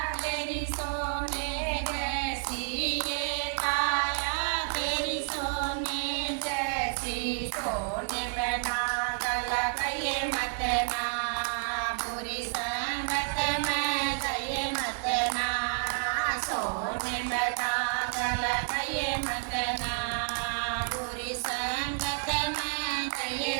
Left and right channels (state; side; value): silent; left; 58 dB below the other